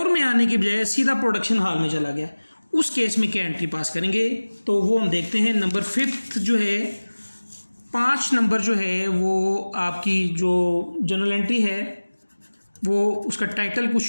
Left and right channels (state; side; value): inverted; both; correlation -1.00